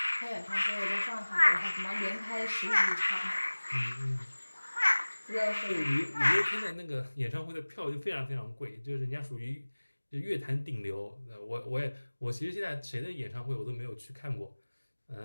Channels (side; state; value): both; inverted; correlation -1.00